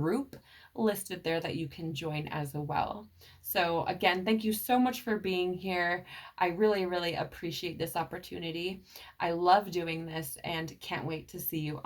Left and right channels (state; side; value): identical; both; correlation 1.00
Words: listed there that you can join as well. So again, thank you so much for being here. I really, really appreciate this opportunity. I love doing this and can't wait to see you